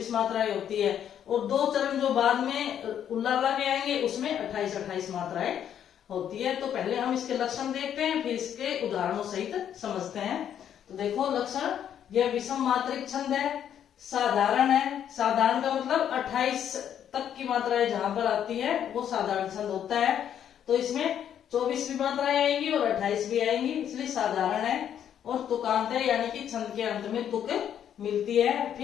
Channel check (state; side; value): quieter; right; 9.5 dB